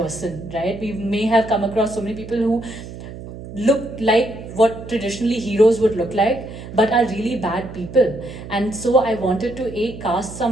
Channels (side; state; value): right; noise; hum, 12 dB below the sound